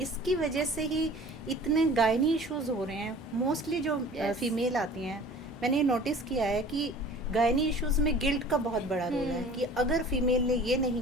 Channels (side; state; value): both; normal; correlation 0.45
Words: इसकी वजह से ही इतने गायनी इश्यूज हो रहे हैं. मोस्टली जो Yes. फीमेल आती हैं, मैंने नोटिस किया है कि गायनी इश्यूज में गिल्ट का बहुत बड़ा रोल है कि अगर फीमेल ने ये